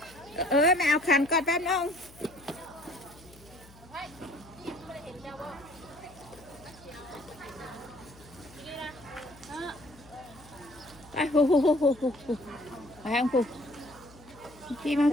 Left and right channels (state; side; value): noise; left; hum, 23 dB below the sound